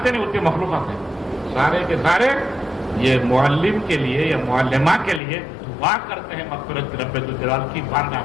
نہیں اتنے مخلوقات ہیں، سارے کے سارے یہ معلم کے لیے یا معلمہ کے لیے دعا کرتے ہیں مغفرت رب ذوالجلال کی بارگاہ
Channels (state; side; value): drops out; right; at 5.2 s